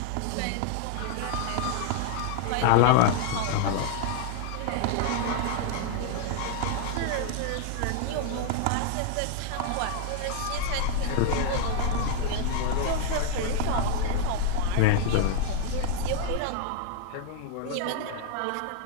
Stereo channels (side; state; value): both; different; correlation 0.00